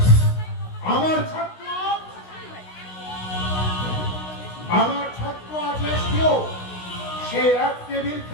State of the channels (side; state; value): right; late; 16 ms